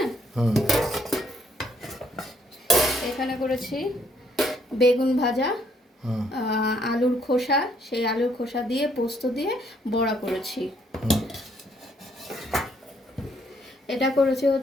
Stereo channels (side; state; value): both; normal; correlation 0.69